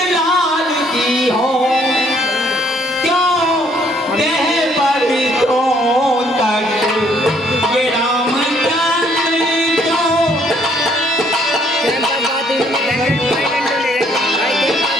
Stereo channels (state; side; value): normal; both; correlation 0.65